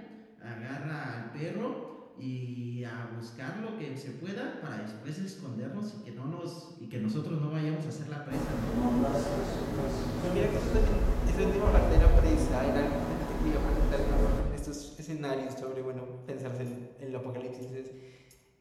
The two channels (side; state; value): both; identical; correlation 1.00